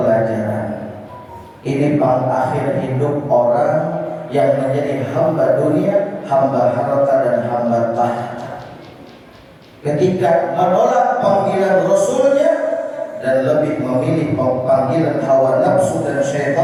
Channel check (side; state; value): both; identical; correlation 1.00